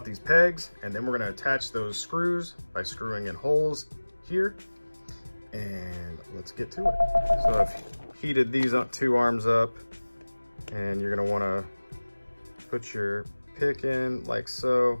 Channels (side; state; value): both; inverted; correlation -1.00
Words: these pegs, and then we're going to attach those screws by screwing in holes here. And let's get to it. So I've heated these two arms up, and you're going to want to put your pick in like so.